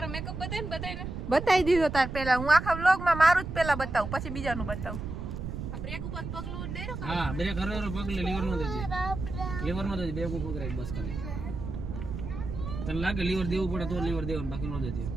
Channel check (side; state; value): right; noise; rumble, 6 dB below the sound